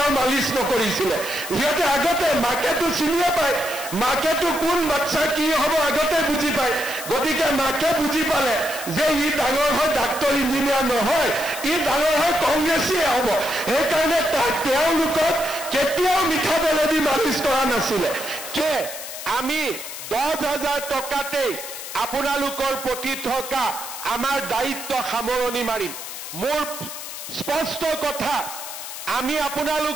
মালিচ নকৰিছিলে সিহঁতে আগতে মাকেতো চিনিয়ে পায় মাকেতো কোন বাচ্চা কি হ'ব আগতে বুজি পায় গতিকে মাকে বুজি পালে যে ই ডাঙৰ হয় ডাক্তৰ ইঞ্জিনিয়াৰ নহয় ই ডাঙৰ হয় কংগ্ৰেছীয়ে হ'ব সেইকাৰণে তাক তেওঁলোকক কেতিয়াও মিঠাতেলেদি মালিচ কৰা নাছিলে যে আমি 10,000 টকাতেই আপোনালোকৰ প্ৰতি থকা আমাৰ দায়িত্ব সামৰণি মাৰিম মোৰ স্পষ্ট কথা আমি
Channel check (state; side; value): noise; left; hiss, 9 dB below the sound